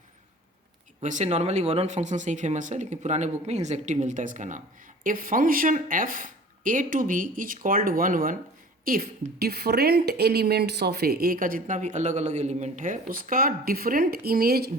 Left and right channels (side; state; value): both; normal; correlation 0.44